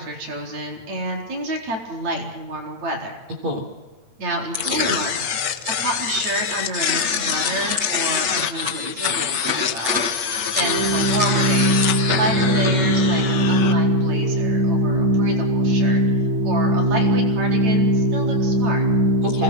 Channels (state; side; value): late; left; 8.8 ms